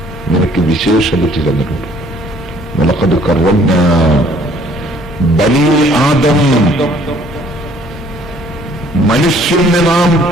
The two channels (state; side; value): noise; right; hum, 19 dB below the sound